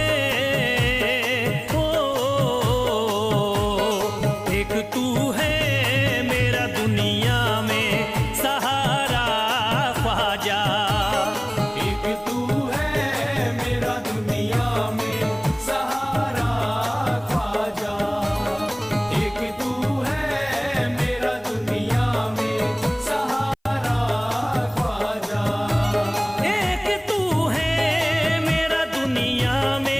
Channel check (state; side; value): identical; both; correlation 1.00